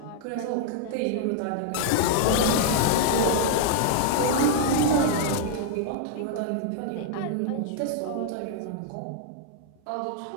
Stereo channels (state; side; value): different; both; correlation -0.01